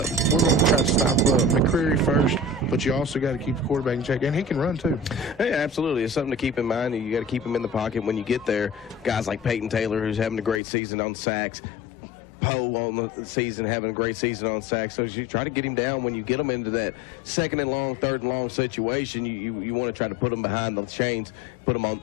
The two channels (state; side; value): drops out; right; at 10.6 s